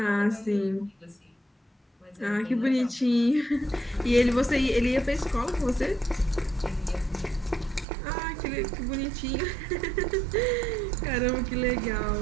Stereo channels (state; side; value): drops out; left; at 7.9 s